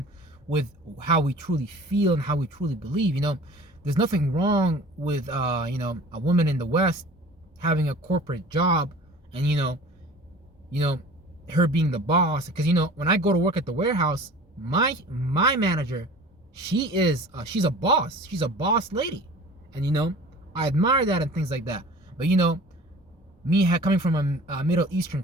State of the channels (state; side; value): normal; both; correlation 0.43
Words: with how we truly feel and how we truly believe. You know, there's nothing wrong with you know, a woman in the West having a corporate job, and you know her being the boss. Because, you know, when I go to work at the warehouse, my manager, she's a boss. She's a boss lady, and you know, I admire that and things like that. But you know, me coming from a Middle Eastern